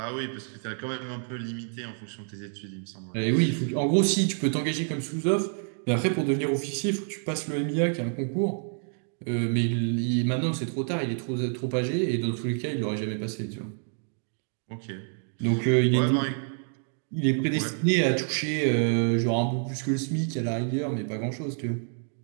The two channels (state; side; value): silent; left; 59 dB below the other